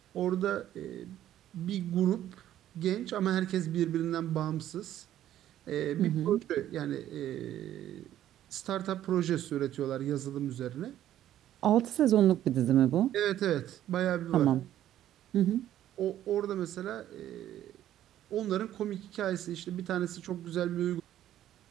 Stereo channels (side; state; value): left; quieter; 12.1 dB